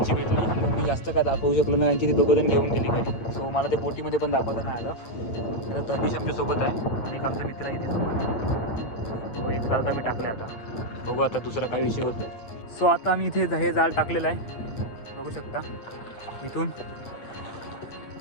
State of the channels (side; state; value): right; late; 8.8 ms